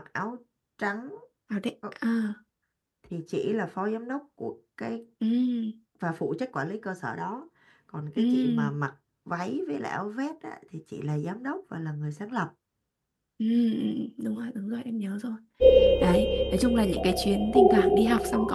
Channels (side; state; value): both; identical; correlation 1.00